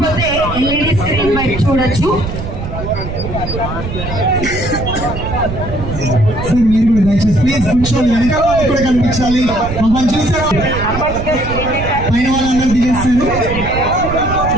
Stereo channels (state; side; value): noise; right; rumble, 7 dB below the sound